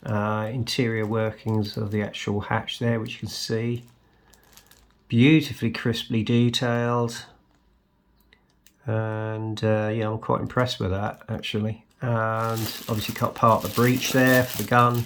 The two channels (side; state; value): both; identical; correlation 1.00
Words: interior workings of the actual hatch there, which you can see. Beautifully crisply detailed. And yeah, I'm quite impressed with that actually. And obviously cut part of the breech there for the gun,